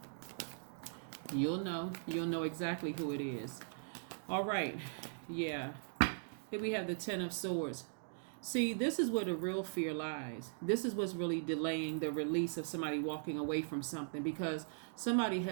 You'll know exactly who it is. All right. Yeah. Here we have the Ten of Swords. See, this is where the real fear lies. This is what's really delaying the release of somebody walking away from something, because somebody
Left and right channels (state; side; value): silent; left; digital silence